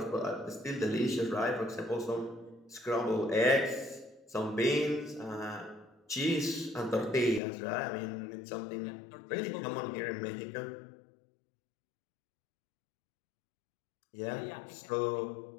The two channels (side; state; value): right; drops out; at 7.4 s